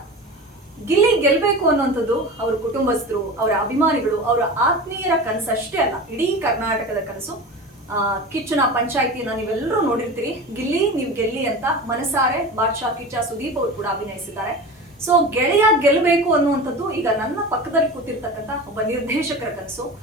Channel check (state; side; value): normal; both; correlation 0.31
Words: ಗಿಲ್ಲಿ ಗೆಲ್ಬೇಕು ಅನ್ನುವಂಥದ್ದು ಅವರ ಕುಟುಂಬಸ್ಥರು, ಅವರ ಅಭಿಮಾನಿಗಳು, ಅವರ ಆತ್ಮೀಯರ ಕನಸು ಅಷ್ಟೇ ಅಲ್ಲ, ಇಡೀ ಕರ್ನಾಟಕದ ಕನಸು. ಕಿಚ್ಚನ ಪಂಚಾಯಿತಿನ ನೀವೆಲ್ಲರೂ ನೋಡಿರ್ತೀರಿ. ಗಿಲ್ಲಿ ನೀವು ಗೆಲ್ಲಿ ಅಂತ ಮನಸಾರೆ ಬಾದ್ಶಾ ಕಿಚ್ಚ ಸುದೀಪ್ ಅವರು ಕೂಡ ಅಭಿನಯಿಸಿದ್ದಾರೆ. ಸೊ ಗೆಳೆಯ ಗೆಲ್ಲಬೇಕು ಅನ್ನುವಂಥದ್ದು ಈಗ ನನ್ನ ಪಕ್ಕದಲ್ಲಿ ಕೂತಿರ್ತಕ್ಕಂಥ ಒಬ್ಬ ನಿರ್ದೇಶಕರ ಕನಸು.